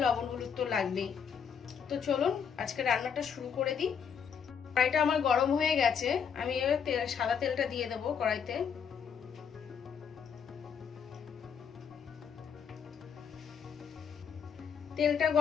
লবণ হলুদ তো লাগবেই। তো চলুন আজকে রান্নাটা শুরু করে দিই। কড়াইটা আমার গরম হয়ে গেছে, আমি সাদা তেলটা দিয়ে দেবো কড়াইতে। তেলটা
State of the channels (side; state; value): right; quieter; 7.1 dB